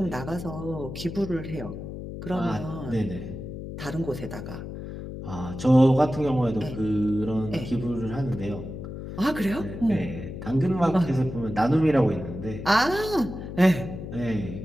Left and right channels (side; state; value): left; noise; hum, 9 dB below the sound